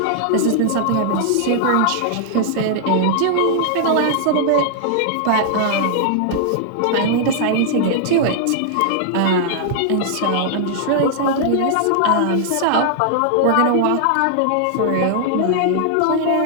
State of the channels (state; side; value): different; both; correlation -0.01